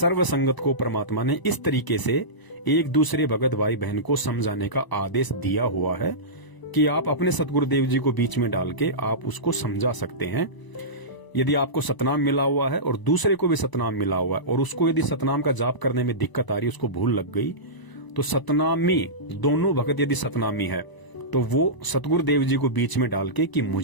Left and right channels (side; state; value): right; late; 1.0 ms